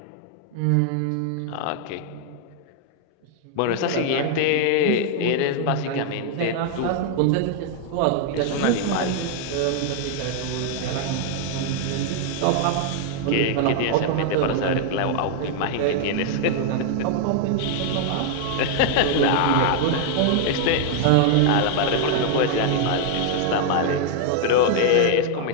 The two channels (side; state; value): both; different; correlation 0.00